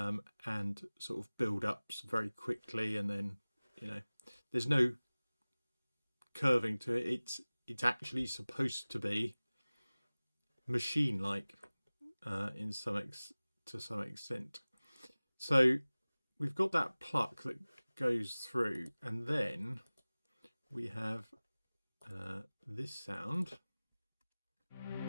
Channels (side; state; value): both; inverted; correlation -0.99